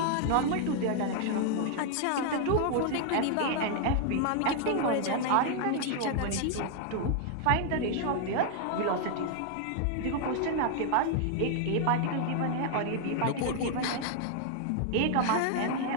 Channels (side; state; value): both; different; correlation 0.00